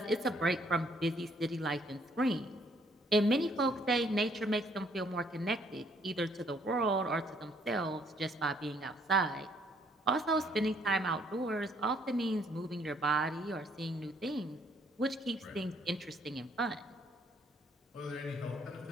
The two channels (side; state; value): both; normal; correlation 0.66